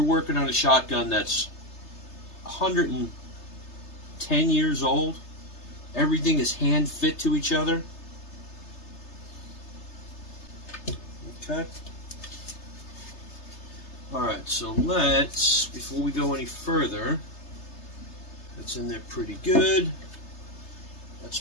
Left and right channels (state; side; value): late; right; 3.3 ms